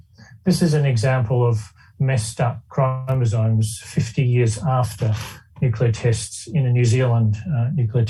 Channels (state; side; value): identical; both; correlation 1.00